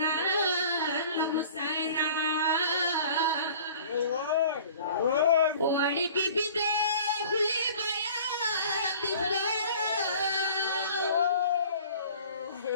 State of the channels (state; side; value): inverted; both; correlation -0.47